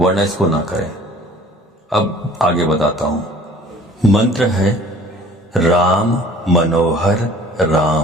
इसको ना करें। अब आगे बताता हूं। मंत्र है राम मनोहर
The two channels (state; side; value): normal; both; correlation 0.50